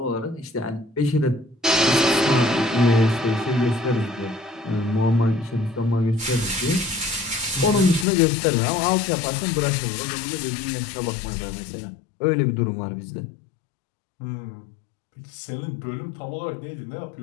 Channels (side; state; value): right; drops out; at 8.1 s